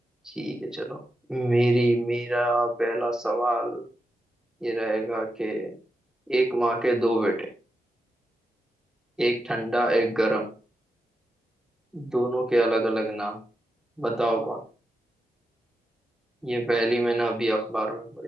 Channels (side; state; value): both; normal; correlation 0.87